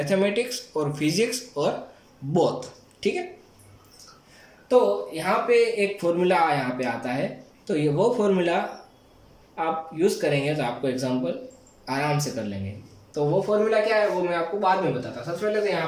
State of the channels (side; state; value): both; identical; correlation 1.00